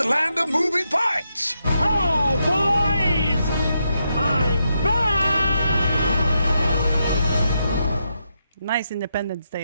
land of moving parts. Oh, boys! I'm back! Nice Independence Day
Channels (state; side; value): inverted; both; correlation -0.83